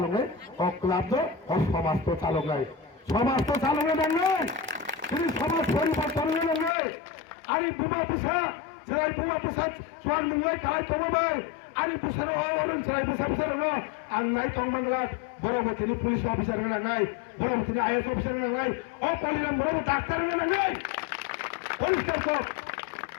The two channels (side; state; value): right; drops out; at 6.7 s